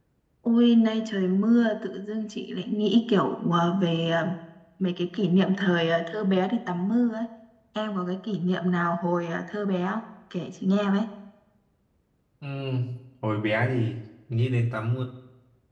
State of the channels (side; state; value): both; identical; correlation 1.00